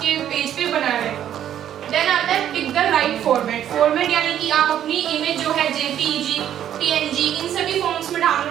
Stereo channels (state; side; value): quieter; left; 10.6 dB